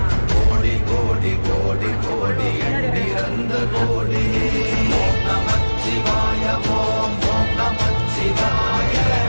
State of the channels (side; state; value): both; inverted; correlation -1.00